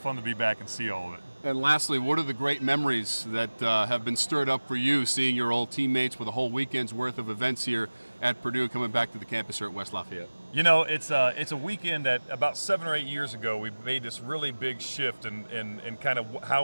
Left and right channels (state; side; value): inverted; both; correlation -1.00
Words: to be back and see all of it. And lastly, what are the great memories that have been stirred up for you, seeing your old teammates with a whole weekend's worth of events here at Purdue coming back to the campus here at West Lafayette? You know, it's a weekend that about 7 or 8 years ago we made this really big shift in kind of